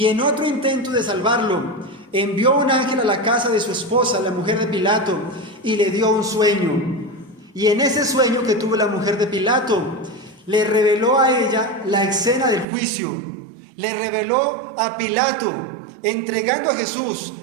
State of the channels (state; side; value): drops out; left; at 12.7 s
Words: en otro intento de salvarlo, envió un ángel a la casa de su esposa, la mujer de Pilato, y le dio un sueño. Y en ese sueño que tuvo la mujer de Pilato, le reveló a ella la escena del juicio. Le reveló a Pilato entregando a Jesús